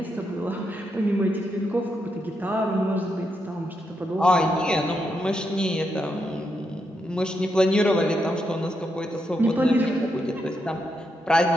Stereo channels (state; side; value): normal; both; correlation 0.82